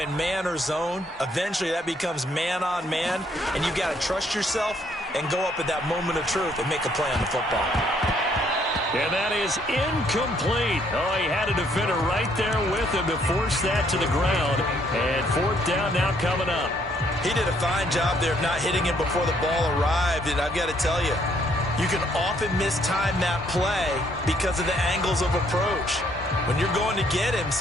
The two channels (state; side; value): normal; both; correlation 0.68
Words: man or zone. Eventually that becomes man on man, and you've got to trust yourself and go up at that moment of truth and make a play on the football. And that is incomplete. Oh, he had a defender right there with him to force that to the ground. And fourth down now coming up. He did a fine job there of not hitting him before the ball arrived, and I've got to tell you, you can often mistime that play because of the angles of approach. When you're going to get him,